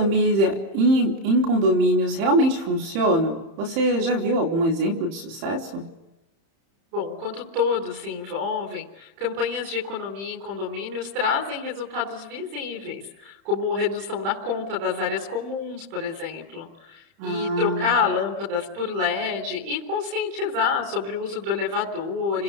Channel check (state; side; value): late; left; 30 ms